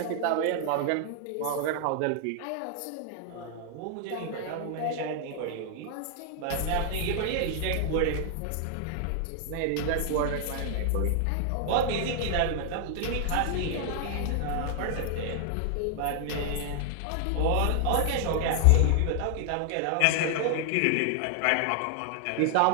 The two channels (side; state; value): both; different; correlation 0.00